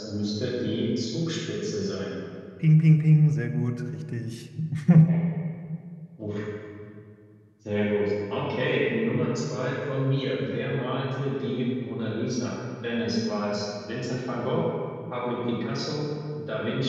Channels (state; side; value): identical; both; correlation 1.00